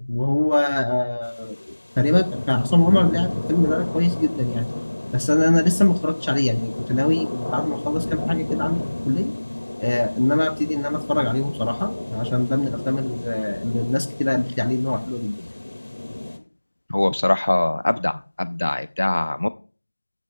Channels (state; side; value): inverted; both; correlation -1.00